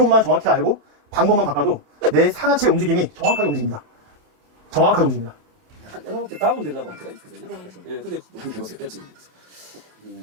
정확히 알고 방법만 바꿔도 내 상하체 움직임이 정확하게 움직입니다. 내가 볼때 다운되려고 할 때가 있거든요. 예, 근데 한번 해보세요. 됐지?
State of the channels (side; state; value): left; late; 27 ms